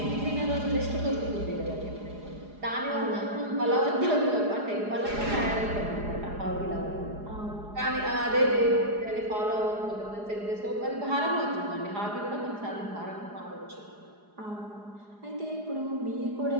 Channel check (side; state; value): left; late; 4.8 ms